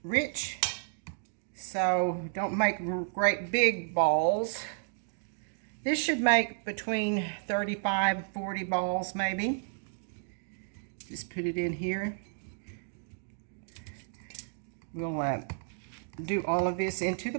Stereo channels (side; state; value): left; silent; digital silence